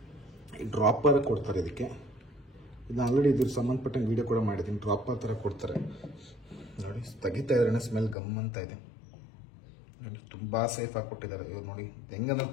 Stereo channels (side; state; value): right; drops out; at 8.2 s